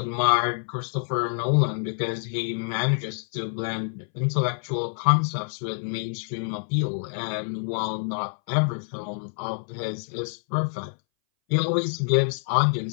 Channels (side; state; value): right; silent; 60 dB below the other